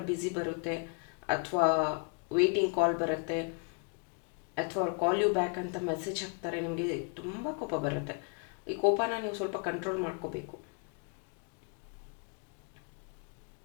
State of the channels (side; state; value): right; quieter; 37.0 dB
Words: ಬ್ಯುಸಿ ಬರುತ್ತೆ ಅಥವಾ ವೇಟಿಂಗ್ ಕಾಲ್ ಬರುತ್ತೆ ಅಥವಾ ಅವ್ರು ಕಾಲ್ ಯು ಬ್ಯಾಕ್ ಅಂತ ಮೆಸೇಜ್ ಹಾಕ್ತಾರೆ. ನಿಮಗೆ ತುಂಬ ಕೋಪ ಬರುತ್ತೆ. ಈ ಕೋಪನ ನೀವು ಸ್ವಲ್ಪ ಕಂಟ್ರೋಲ್ ಮಾಡ್ಕೋಬೇಕು.